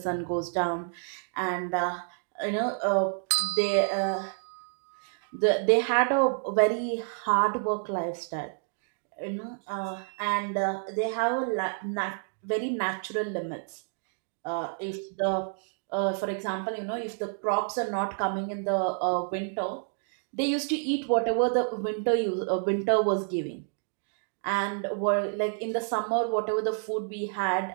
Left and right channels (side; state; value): left; silent; 58 dB below the other